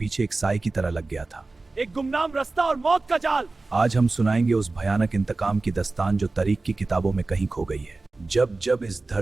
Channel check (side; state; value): left; quieter; 3.4 dB